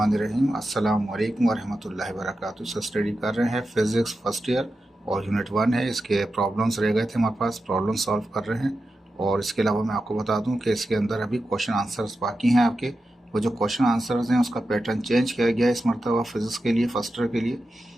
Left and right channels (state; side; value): normal; both; correlation 0.91